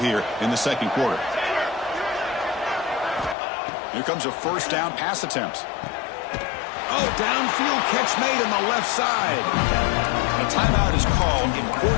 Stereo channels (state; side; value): drops out; right; at 3.4 s